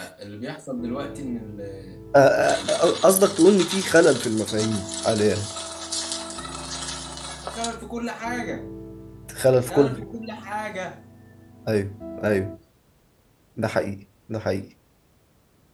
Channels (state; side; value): identical; both; correlation 1.00